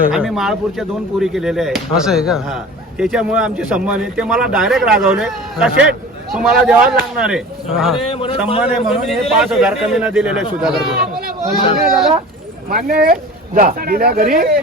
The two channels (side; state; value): both; normal; correlation 0.39